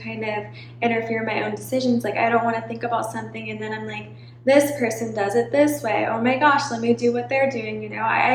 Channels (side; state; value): both; identical; correlation 1.00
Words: of interfere in my own decisions. Like, I don't want to think about something and then I'm like, this person does it this way. Oh my gosh, let me do what they're doing.